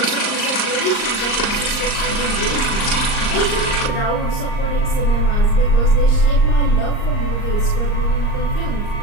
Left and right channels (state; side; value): late; right; 38 ms